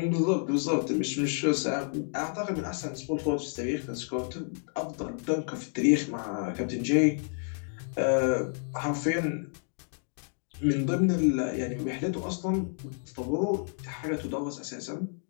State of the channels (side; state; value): right; silent; 55 dB below the other